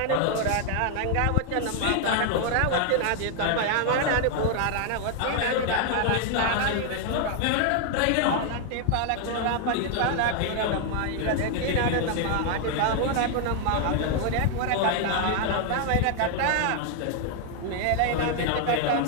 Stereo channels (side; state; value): both; different; correlation 0.00